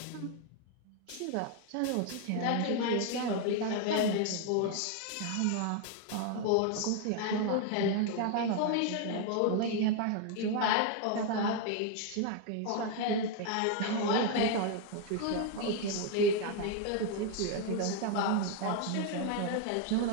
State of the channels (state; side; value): different; both; correlation 0.01